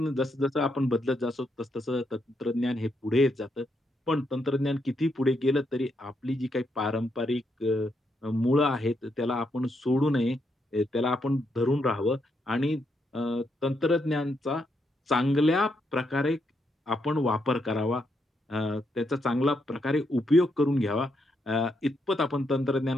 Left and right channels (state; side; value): normal; both; correlation 0.79